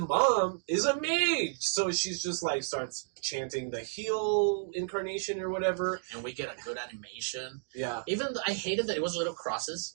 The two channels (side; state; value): left; silent; digital silence